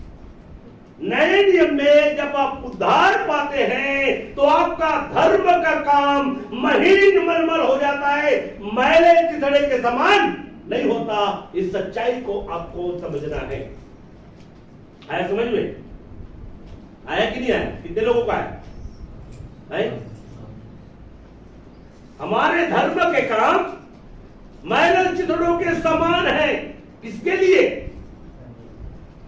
नए नियम में जब आप उद्धार पाते हैं तो आपका धर्म का काम महीन मलमल हो जाता है, मैले चिथड़े के समान नहीं होता। इस सच्चाई को आपको समझना है। आया समझ में? आया कि नहीं आया? कितने लोगों का है? हमारे धर्म के काम मैले चिथड़ों के समान है। किसके लिए?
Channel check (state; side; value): identical; both; correlation 1.00